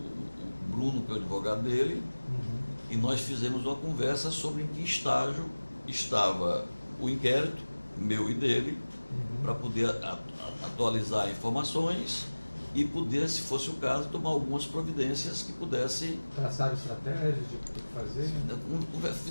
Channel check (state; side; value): inverted; both; correlation -1.00